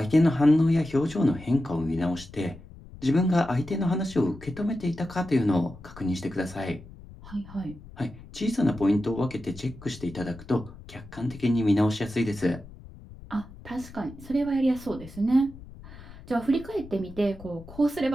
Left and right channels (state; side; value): noise; left; rumble, 18 dB below the sound